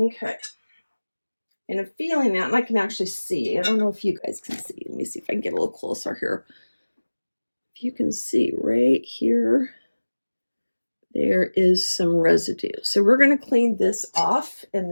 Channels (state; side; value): inverted; both; correlation -1.00